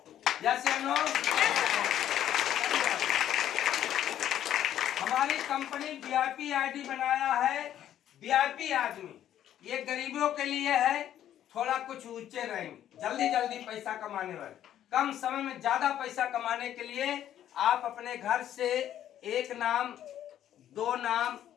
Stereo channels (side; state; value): right; quieter; 11.2 dB